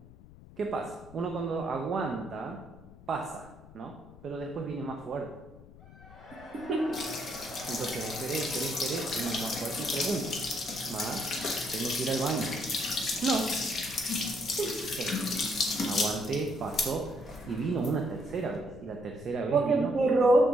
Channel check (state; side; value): noise; left; rumble, 20 dB below the sound